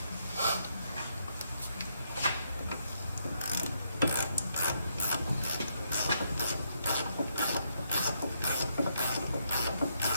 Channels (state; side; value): inverted; both; correlation -0.77